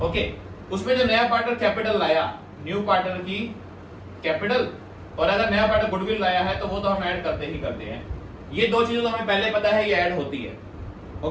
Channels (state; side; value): identical; both; correlation 1.00